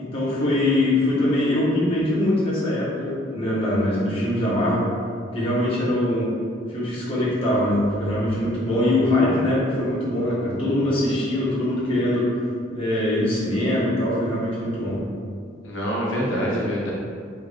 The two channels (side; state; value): both; normal; correlation 0.60